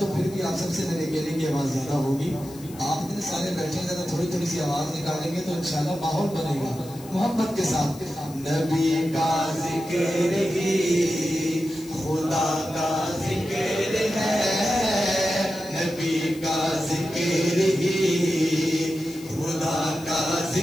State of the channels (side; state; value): left; noise; hiss, 20 dB below the sound